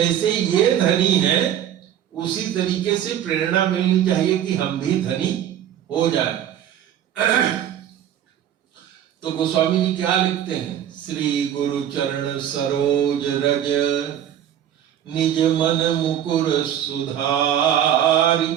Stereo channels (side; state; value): left; quieter; 10.5 dB